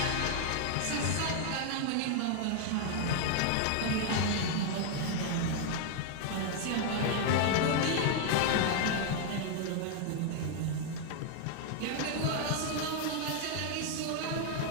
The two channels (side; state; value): both; different; correlation 0.00